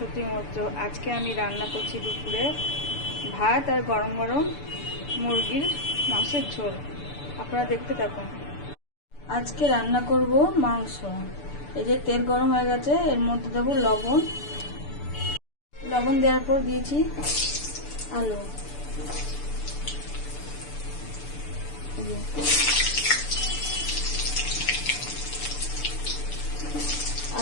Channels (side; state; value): right; late; 6.9 ms